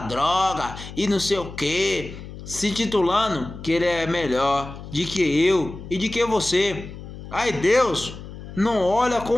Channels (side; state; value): left; noise; hum, 13 dB below the sound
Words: droga, e não sei o que, se titulando que ele é melhor de que eu e de que você. Aí Deus não olha